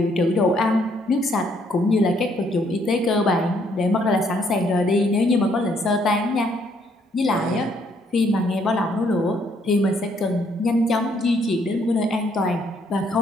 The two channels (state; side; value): normal; both; correlation 0.69